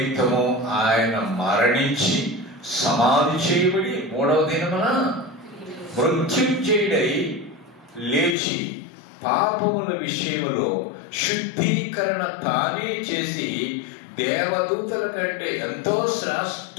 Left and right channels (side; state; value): right; drops out; at 8.3 s